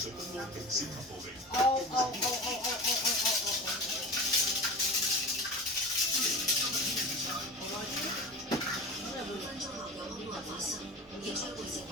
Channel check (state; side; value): normal; both; correlation 0.32